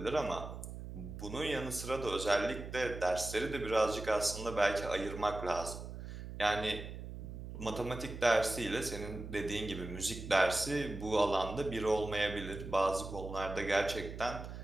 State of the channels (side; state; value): right; noise; hum, 9 dB below the sound